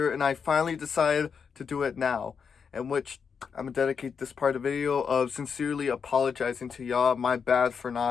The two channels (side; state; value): right; quieter; 6.3 dB